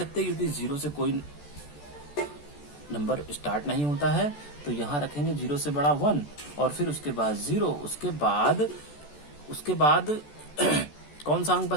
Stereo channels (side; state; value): right; late; 14 ms